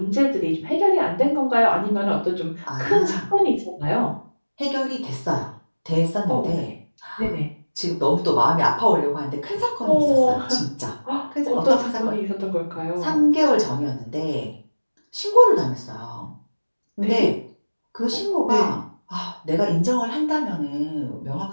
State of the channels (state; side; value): inverted; both; correlation -1.00